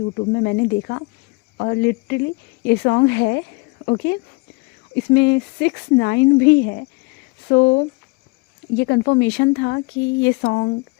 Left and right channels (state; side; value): quieter; right; 28.3 dB